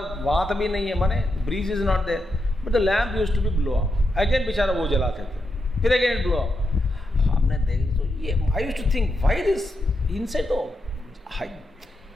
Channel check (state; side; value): normal; both; correlation 0.85